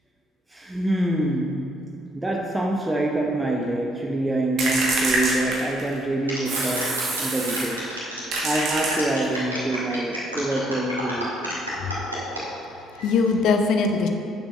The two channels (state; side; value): normal; both; correlation 0.68